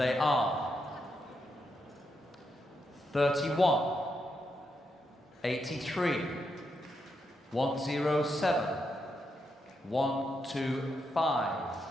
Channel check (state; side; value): normal; both; correlation 0.82